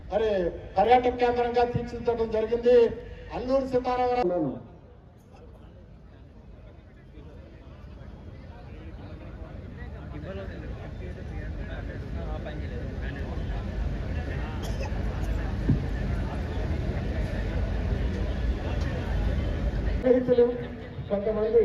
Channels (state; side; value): identical; both; correlation 1.00